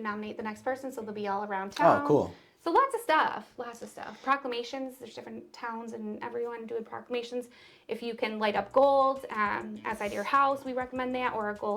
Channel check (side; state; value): both; identical; correlation 1.00